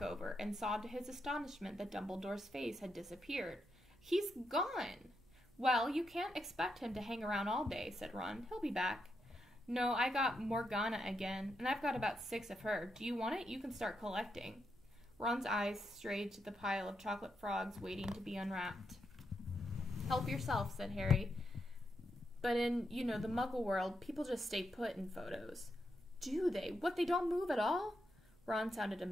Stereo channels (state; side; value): normal; both; correlation 0.82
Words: over and saw to his astonishment that Dumbledore's face had disappeared. "He's gone." "Well, you can't expect him to hang around all day," said Ron. "He'll be back." "No, I got Morgana again, and I've got about 6 of her. Do you want it? You can start collecting." Ron's eyes strayed to the pile of chocolate frogs waiting to be unwrapped. "Help yourself," said Harry. "But in, the Muggle world, people just stay put in photos." "Do they? What, they don't move at all?" Ron sounded